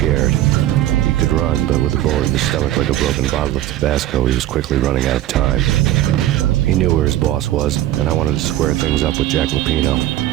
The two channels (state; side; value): quieter; left; 13.8 dB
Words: He could run, but with a bullet in his stomach like a broken bottle of Tabasco, he was quickly running out of time. He knew where his boss was, and I wanted to square things up with Jack Lupino.